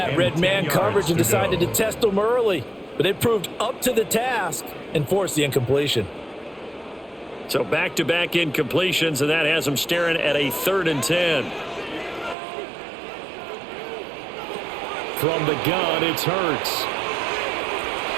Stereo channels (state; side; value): drops out; left; at 12.4 s